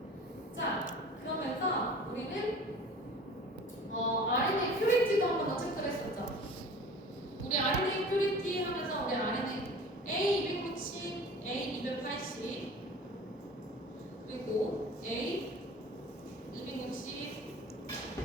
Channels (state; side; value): normal; both; correlation 0.42